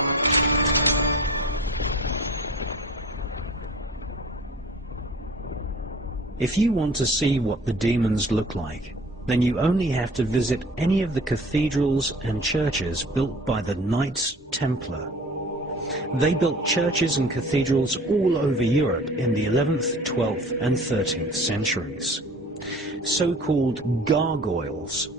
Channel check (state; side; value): normal; both; correlation 0.45